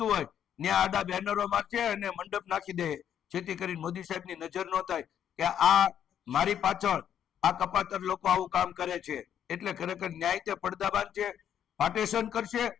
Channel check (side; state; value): right; quieter; 9.5 dB